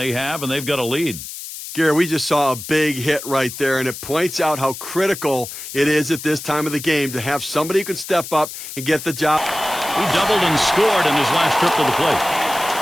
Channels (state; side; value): noise; left; hiss, 10 dB below the sound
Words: have, and they've got a lead. Gary, we just saw a big hit right there, and it points out how critical it is at this time of the game to have somebody who can step up and get the job. He doubled and scored in his last trip to the plate.